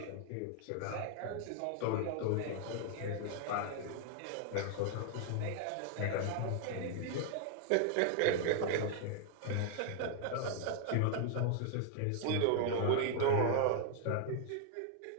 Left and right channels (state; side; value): different; both; correlation 0.00